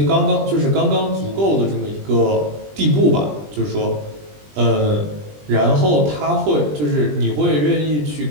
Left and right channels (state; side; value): late; left; 20 ms